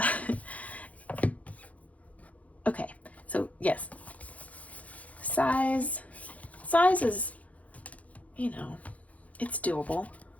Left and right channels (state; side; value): late; right; 0.068 ms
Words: Okay, so yes, size is, you know, it's doable.